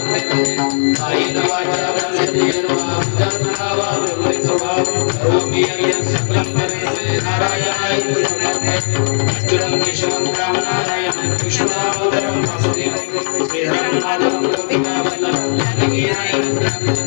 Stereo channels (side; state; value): right; silent; 64 dB below the other